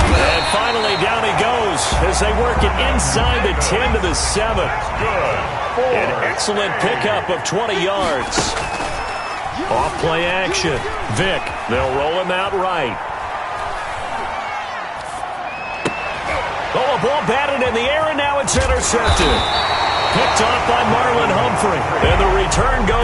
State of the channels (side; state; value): both; identical; correlation 1.00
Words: And finally down he goes as they work it inside the 10 to the 7. An excellent pickup of 20 yards. Off play action. Vic, they'll roll him out right. Oh, a ball batted in the air, and now it's intercepted. Picked off by Marlon Humphrey. And the return